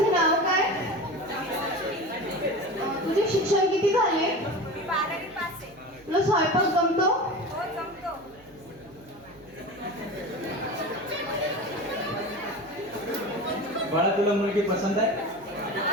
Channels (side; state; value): right; noise; hum, 26 dB below the sound